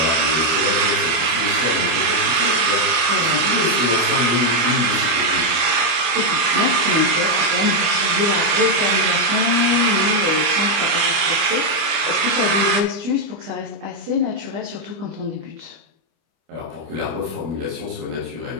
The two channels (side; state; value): left; late; 25 ms